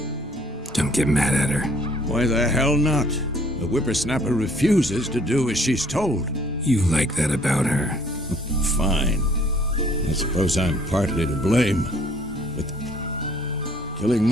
Don't get mad at her. Why the hell not? The whippersnapper refuses to do as she's told. You like that about her. Fine. I suppose I'm partly to blame. But killing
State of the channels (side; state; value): both; normal; correlation 0.59